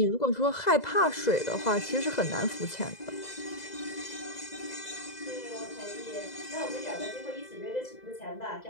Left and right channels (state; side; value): late; right; 2.0 ms